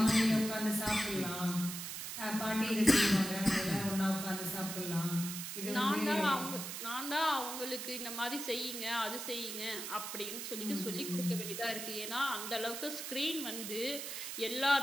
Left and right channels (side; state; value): right; noise; hiss, 6 dB below the sound